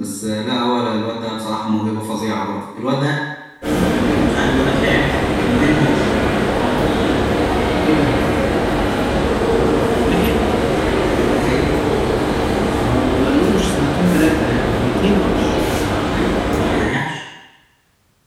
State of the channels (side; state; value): both; identical; correlation 1.00